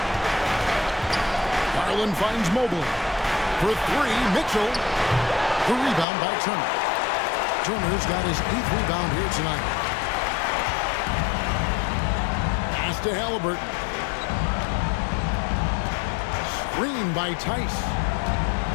Garland finds Mobley. For 3, Mitchell. The rebound by Turner. Turner's got his 8th rebound here tonight. Pass to Halliburton. Screen by Tice.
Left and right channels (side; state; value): right; drops out; at 6.1 s